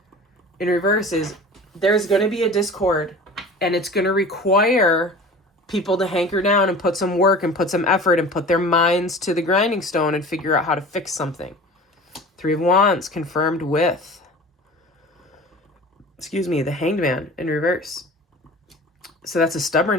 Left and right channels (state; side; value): normal; both; correlation 0.39